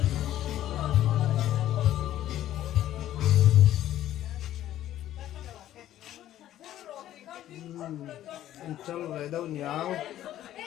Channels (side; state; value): right; quieter; 12.7 dB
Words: chal về đâu nháo